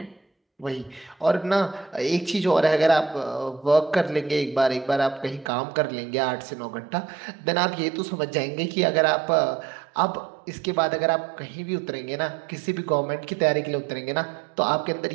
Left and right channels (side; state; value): left; drops out; at 5.5 s